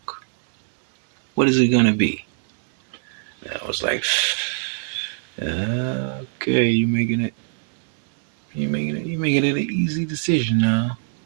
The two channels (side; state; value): left; silent; 63 dB below the other